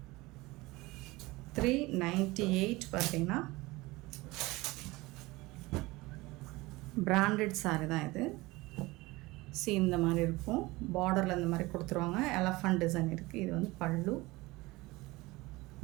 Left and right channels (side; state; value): left; quieter; 21.3 dB